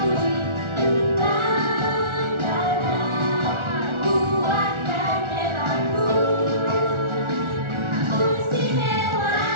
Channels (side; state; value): left; late; 1.4 ms